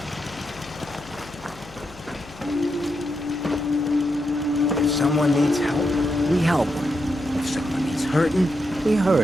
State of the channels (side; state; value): left; noise; hum, 20 dB below the sound